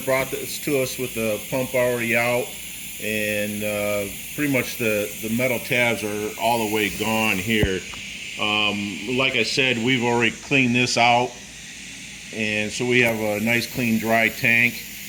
this to us with the pump already out, and pretty much the metal tabs are all the way gone here. Like I said, we've already cleaned this out, and so we have a nice clean dry tank.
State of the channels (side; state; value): left; noise; hum, 27 dB below the sound